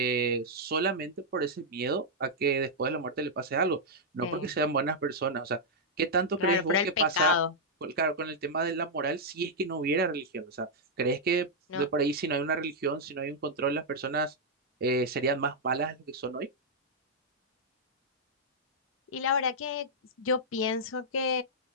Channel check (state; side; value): normal; both; correlation -0.06